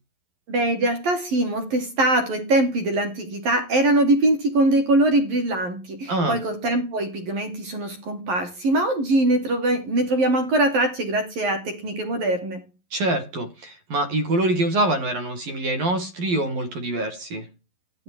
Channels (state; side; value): late; left; 11 ms